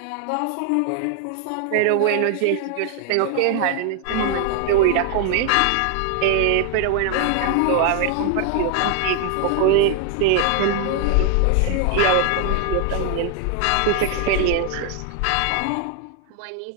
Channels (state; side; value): different; both; correlation 0.00